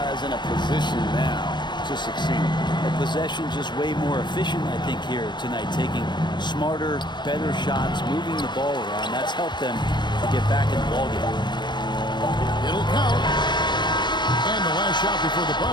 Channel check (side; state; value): right; late; 0.22 ms